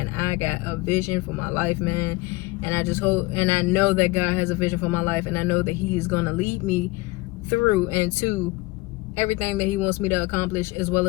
I got a vision for my life, man. And I just hope, and I know that God has a vision for my life, and I know that He is gonna lead me through and to everything that He wants me to accomplish, as well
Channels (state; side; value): quieter; right; 22.0 dB